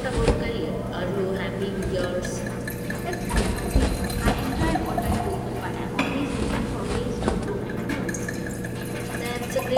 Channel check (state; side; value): identical; both; correlation 1.00